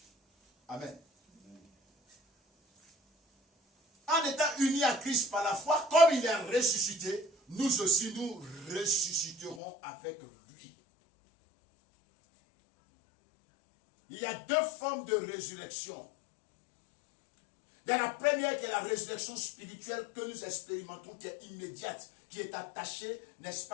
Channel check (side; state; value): right; drops out; at 9.6 s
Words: Amen. En étant unis à Christ par la foi, comme il est ressuscité, nous aussi nous ressusciterons avec lui. Il y a deux formes de résurrection. Il y a la première qui est la résurrection spirituelle que nous expérimentons, qui est immédiate, qui est attachée, n'est-ce